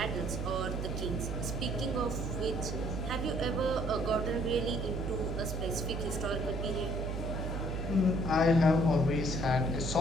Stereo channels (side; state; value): right; noise; hum, 3 dB below the sound